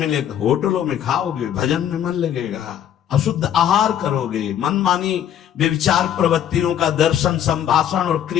लेकर होटलों में खाओगे, भजन में मन लगेगा, अशुद्ध आहार करोगे, मनमानी व्यभिचार प्रवृत्तियों का दर्शन, संभाषण और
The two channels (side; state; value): right; quieter; 10.1 dB